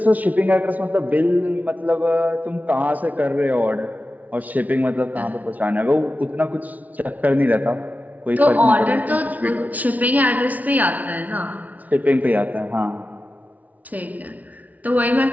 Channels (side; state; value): left; late; 0.073 ms